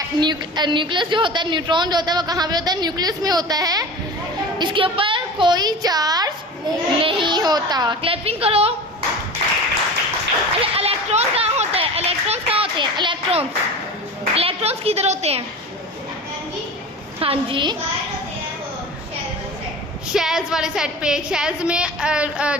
न्यूक्लियस जो होता है, न्यूट्रॉन जो होता है वो कहाँ पे होता है? न्यूक्लियस में होता है। इसके ऊपर कोई चार्ज नहीं होता। क्लैपिंग करो। अच्छा, इलेक्ट्रॉन कहाँ होता है? इलेक्ट्रॉन्स कहाँ होते हैं? इलेक्ट्रॉन्स किधर होते हैं? हाँ जी, शेल्स वाले सेट पे। शेल्स में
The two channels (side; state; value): both; normal; correlation 0.34